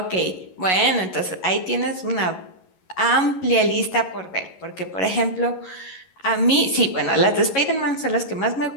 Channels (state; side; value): late; right; 11 ms